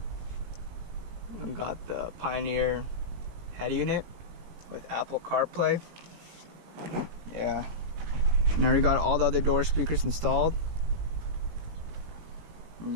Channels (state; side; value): late; left; 18 ms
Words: the Pioneer head unit with Apple CarPlay. Yeah, and I already got all the other door speakers installed. And